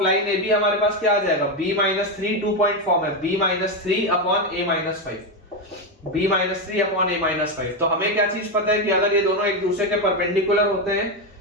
line AB हमारे पास क्या आ जाएगा, B-3, 2 पॉइंट फॉर्म है, B-3/A-5, B-3/A-5। तो हमें क्या चीज पता है कि अगर ये दोनों एक दूसरे के परपेंडिकुलर होते हैं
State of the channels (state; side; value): normal; both; correlation 0.09